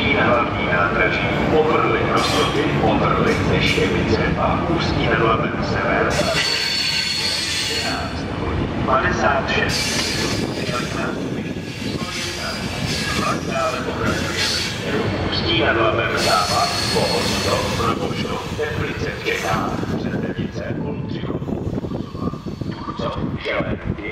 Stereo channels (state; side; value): identical; both; correlation 1.00